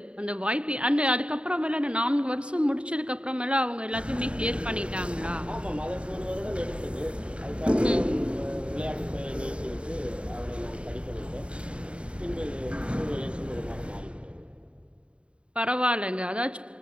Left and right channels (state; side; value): late; left; 0.057 ms